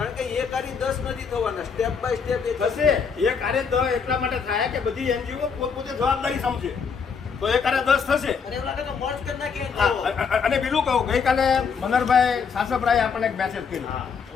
કે એક આરી 10 નથી થવાના, સ્ટેપ બાય સ્ટેપ એ થશે. એક આરે 10 એટલા માટે થાય કે બધી એનજીઓ પોતપોતે જવાબદારી સમજે, તો એક આરે 10 થશે. અને એવું લાગે તો મર્જ કરી નાખીએ. અને બીજું કહું, ગઈકાલે મનરભાઈ સાસપરાએ આપણને એક મેસેજ કર્યો,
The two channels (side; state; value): right; quieter; 6.0 dB